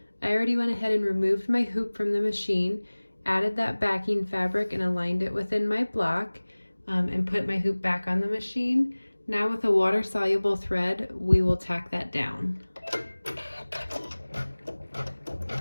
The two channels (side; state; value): both; inverted; correlation -1.00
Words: I already went ahead and removed my hoop from the machine, added that backing fabric and aligned it within my block, and put my hoop back on the machine. Now with a water-soluble thread, we will tack that down.